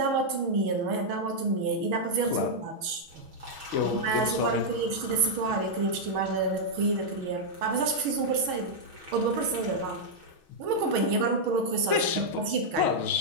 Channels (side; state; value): left; late; 6.3 ms